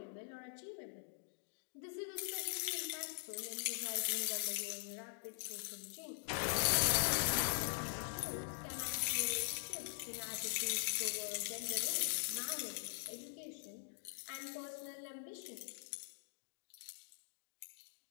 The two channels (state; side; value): silent; right; digital silence